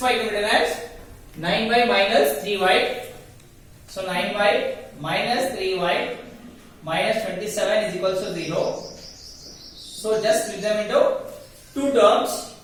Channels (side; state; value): both; identical; correlation 1.00